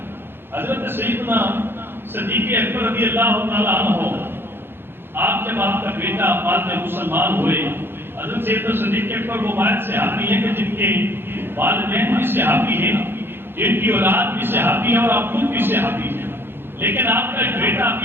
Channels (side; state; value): left; late; 0.10 ms